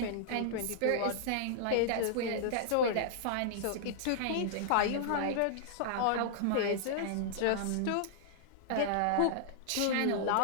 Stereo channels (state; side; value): different; both; correlation -0.01